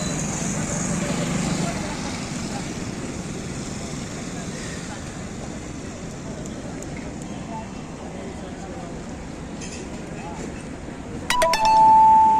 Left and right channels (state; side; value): identical; both; correlation 1.00